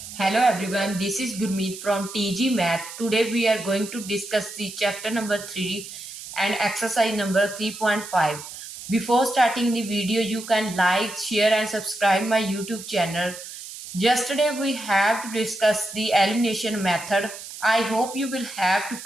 Hello everyone, this is Gurmeet from TG Math. Today we are going to discuss the chapter number 3 and exercise number 3.5. Before starting the video, you can like, share and subscribe my YouTube channel. Yesterday we have to discuss the elimination method. I hope you will have to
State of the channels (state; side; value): noise; right; hiss, 12 dB below the sound